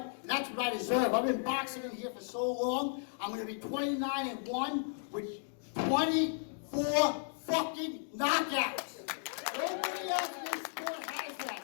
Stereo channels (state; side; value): silent; right; digital silence